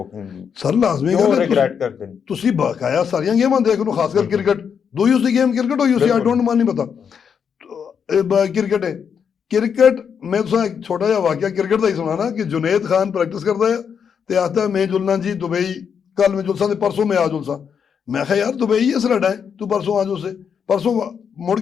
ਸਰ ਲਾਜ਼ਮੀ क्यों ਗੱਲ ਹੈ रिग्रेट करते हैं ਤੁਸੀਂ ਬਕਾਇਆ ਸਾਰੀਆਂ ਗੇਮਾਂ ਦੇਖ ਲਓ ਖਾਸ ਕਰ ਕ੍ਰਿਕਟ ਦੋ ਯੂਸ ਦੀ ਗੇਮ ਕ੍ਰਿਕਟ ਹੋ ਯੂਸ ਆਈ ਡੋਂਟ ਮਾਨ ਨਹੀਂ ਪਤਾ ਕ੍ਰਿਕਟ ਹੈ ਕ੍ਰਿਕਟ ਮੈਂ ਤੁਹਾਨੂੰ ਇੱਕ ਛੋਟਾ ਜਿਹਾ ਵਾਕਿਆ ਕ੍ਰਿਕਟ ਦਾ ਹੀ ਸੁਣਾਣਾ ਕਿ ਜੁਨੇਦ ਖਾਨ ਪ੍ਰੈਕਟਿਸ ਕਰਦਾ ਹੈ ਤੇ ਆਖਦਾ ਮੈਂ ਜੁਲਨਾ ਜੀ ਦੁਬਈ ਕੱਲ ਮੈਂ ਜੁਲਸਾ ਤੇ ਪਰਸੋਂ ਮੈਂ ਆ ਜੁਲਸਾ ਮੈਂ ਕਿਹਾ ਯਾਰ ਦੁਬਈ ਹੈ ਸਰਾਡਾ ਹੈ ਤੂੰ ਪਰਸੋਂ ਆ ਜੋ ਸੇ ਪਰਸੋਂ ਮੁੜ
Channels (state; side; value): quieter; right; 7.1 dB